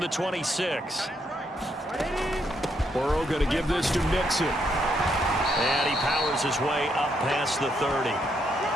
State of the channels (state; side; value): normal; both; correlation 0.76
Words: the 26. Burrow going to give this to Mixon. And he powers his way up past the 30.